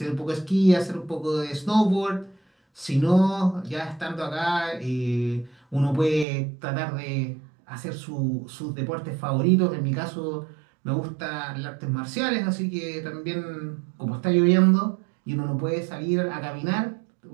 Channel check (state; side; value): drops out; left; at 6.2 s